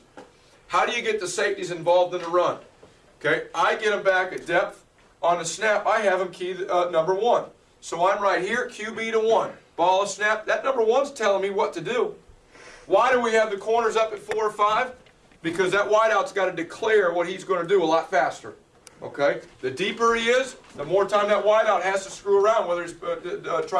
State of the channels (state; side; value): identical; both; correlation 1.00